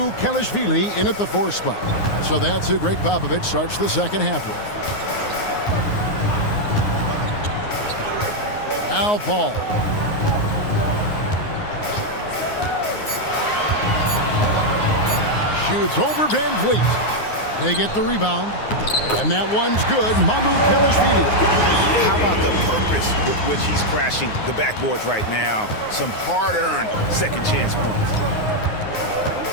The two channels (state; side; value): late; right; 9.6 ms